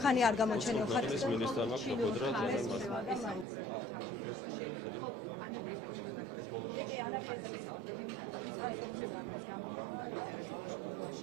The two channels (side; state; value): left; drops out; at 3.5 s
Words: ხანი არ გამოჩენილ ხართ. ეს მინისტრმა მაქვს ყოფოდრა ძალიან მარტივად. ესაუბრებით ჩამშფოთებაში, ხო ანაკლის სპორტთან დაკავშირებით, ხო ანაკლის ესაუბრებით, ანუ ის კონსორციუმი, რომელიც გამოხდა ინტერესს ყოველ